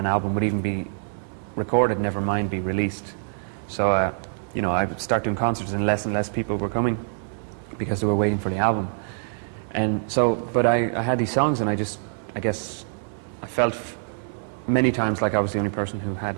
album would even be recorded, never mind be released. So, you know, I would start doing concerts and less people were coming because they were waiting for the album. And so, but I had these songs, and I guess I felt many times like I was the only person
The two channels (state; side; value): silent; left; digital silence